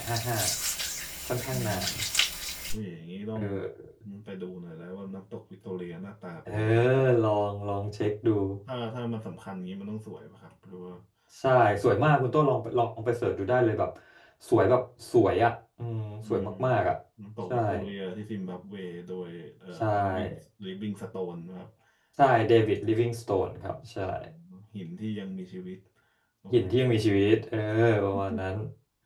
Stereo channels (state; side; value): identical; both; correlation 1.00